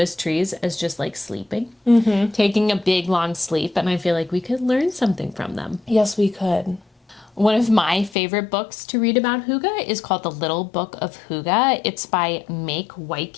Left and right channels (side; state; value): right; drops out; at 8.2 s